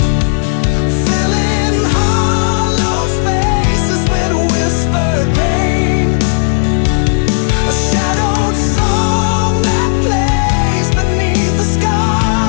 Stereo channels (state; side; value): silent; right; digital silence